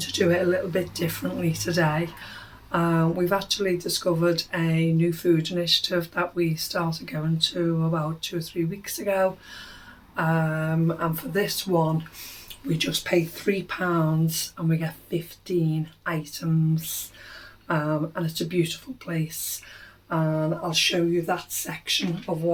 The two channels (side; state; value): both; identical; correlation 1.00